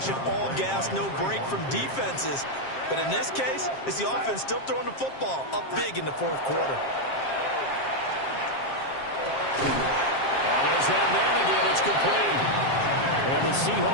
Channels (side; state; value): right; late; 7.5 ms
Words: all gas, no break from defenses. But in this case, it's the offense still throwing the football up big in the 4th quarter. There's that man again. It's complete. And the